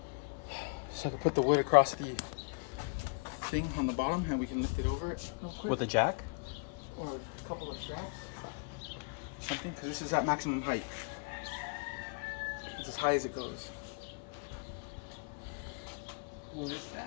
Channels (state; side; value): quieter; right; 36.0 dB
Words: So I can put the wood across the thing on the bottom, and we can lift it over it real quick. With a jack? Or a couple of straps. Something, because this is at maximum height. It's as high as it goes. What is